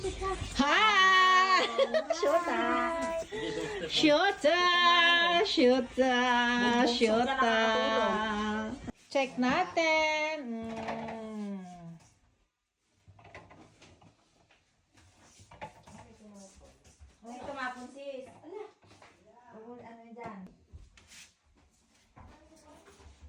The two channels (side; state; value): both; identical; correlation 1.00